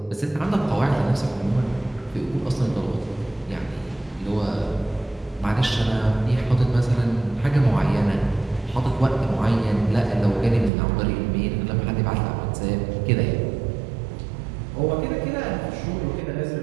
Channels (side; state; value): left; drops out; at 10.7 s